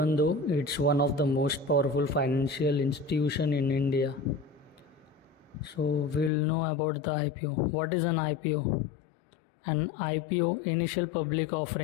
though it's one of the most powerful financial institution in India. So we'll know about the IPO. What is an IPO? An IPO, initial public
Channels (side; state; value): right; drops out; at 6.3 s